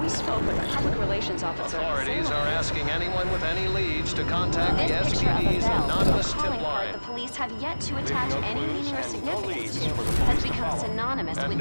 We spoke with a public relations officer. Authorities are asking anyone with any leads to contact the This picture of a SPD's bell, anonymous a tip calling card line. the police have yet to attach no any clues meaning or and no significance leads to, for the has police to become follow. synonymous And with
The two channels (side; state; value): both; inverted; correlation -1.00